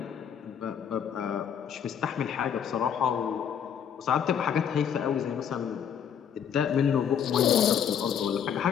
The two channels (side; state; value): right; quieter; 8.3 dB